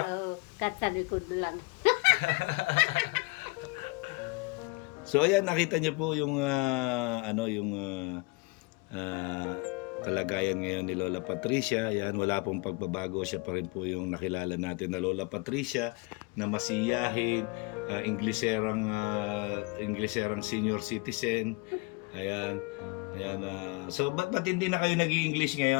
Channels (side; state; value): right; quieter; 27.3 dB